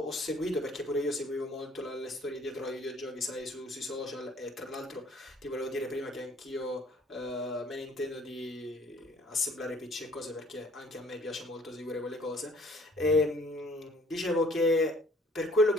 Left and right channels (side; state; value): both; normal; correlation 0.58